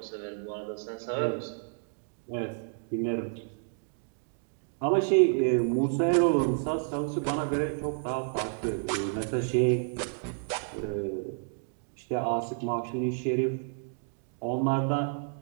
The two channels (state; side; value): silent; left; digital silence